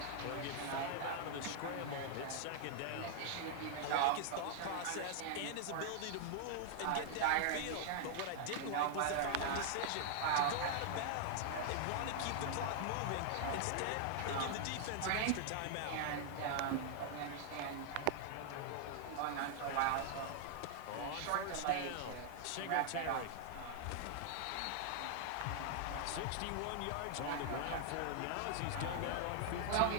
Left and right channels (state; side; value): different; both; correlation 0.00